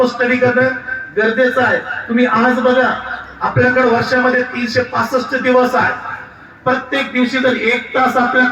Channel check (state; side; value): identical; both; correlation 1.00